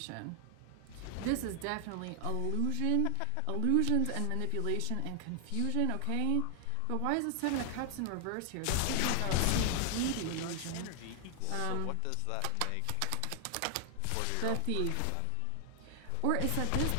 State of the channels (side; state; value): both; different; correlation 0.00